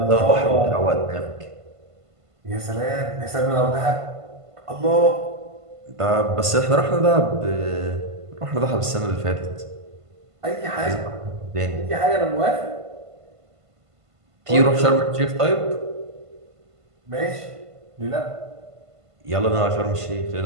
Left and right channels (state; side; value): late; left; 1.5 ms